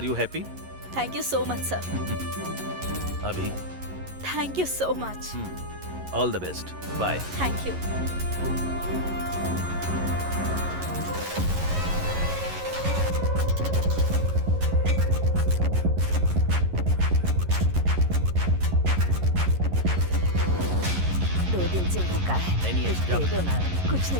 you happy? Thank you so much sir. अभी thank you so much. All the best. Bye. Thank you. दिन से भूखा है। नहीं, कुछ दे दो ना। कुछ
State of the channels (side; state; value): left; late; 11 ms